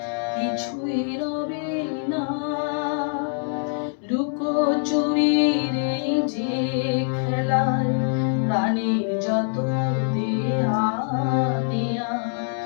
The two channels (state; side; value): silent; right; 63 dB below the other